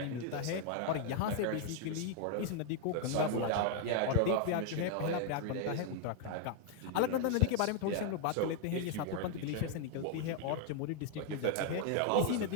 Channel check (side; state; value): both; different; correlation 0.00